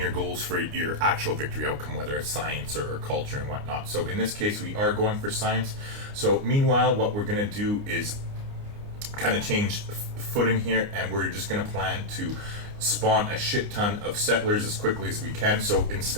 goals for your actual victory outcome, whether it's science or culture and whatnot. So in this case, we are going for science. So meanwhile, what we're going to do is kind of change footing here, and we're just going to plan to spawn a shit ton of settlers as quickly as we can. So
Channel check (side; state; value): left; late; 29 ms